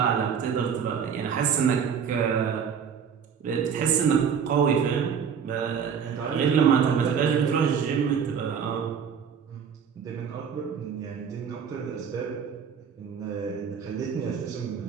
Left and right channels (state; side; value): quieter; left; 7.2 dB